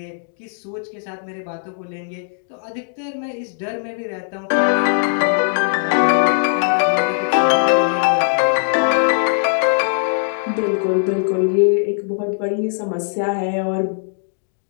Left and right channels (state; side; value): silent; right; digital silence